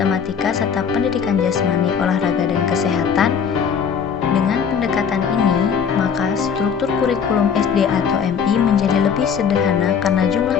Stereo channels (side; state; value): right; quieter; 6.9 dB